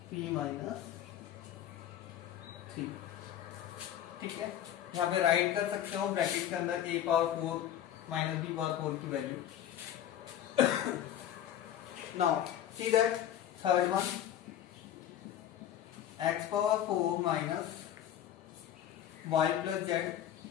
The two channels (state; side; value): quieter; right; 10.9 dB